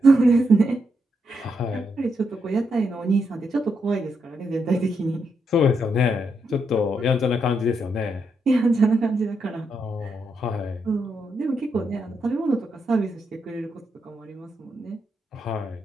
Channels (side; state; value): both; normal; correlation 0.81